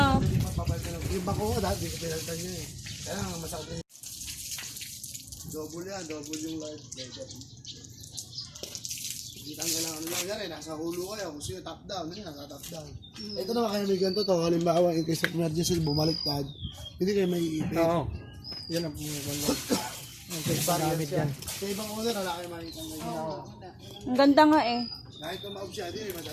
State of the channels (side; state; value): both; identical; correlation 1.00